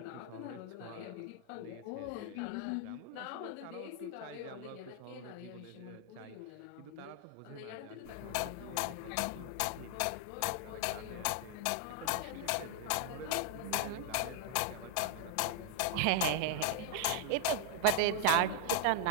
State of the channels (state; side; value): different; both; correlation 0.00